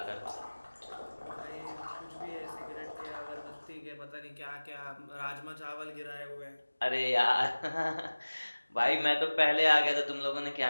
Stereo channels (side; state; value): both; inverted; correlation -1.00